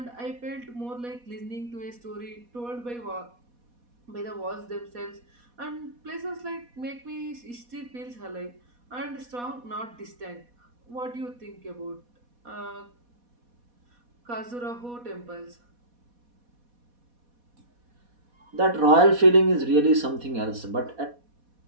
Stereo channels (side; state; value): left; late; 4.1 ms